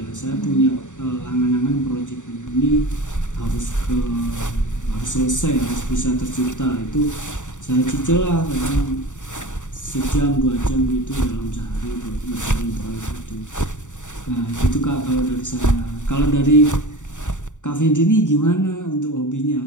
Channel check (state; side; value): late; right; 0.86 ms